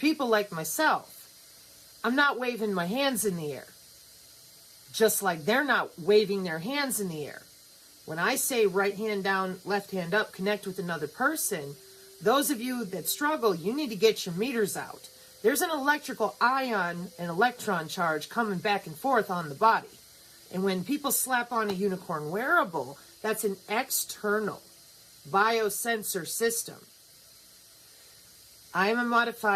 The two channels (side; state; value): both; identical; correlation 1.00